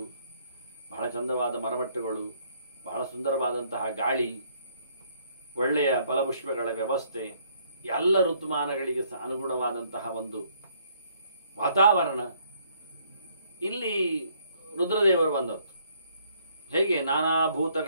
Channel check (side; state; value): both; inverted; correlation -0.66